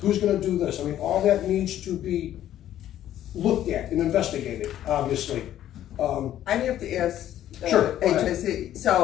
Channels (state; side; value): quieter; right; 12.0 dB